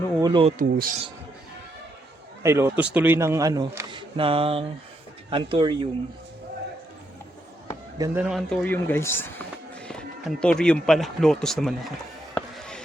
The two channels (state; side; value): normal; both; correlation 0.78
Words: lotus. Ay, lotus tuloy ng ano, ng Anthurium. Ganda ng Anthurium, guys. Anthurium pala. Lotus naman ako.